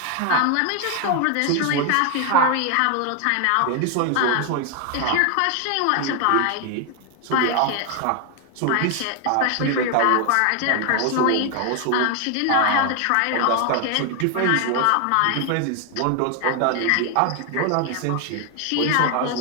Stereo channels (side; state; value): both; different; correlation 0.01